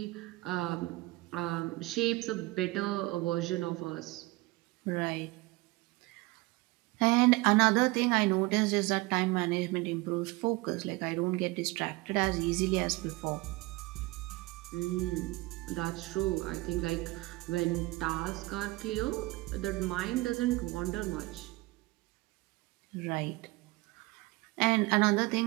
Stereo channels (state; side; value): quieter; left; 22.1 dB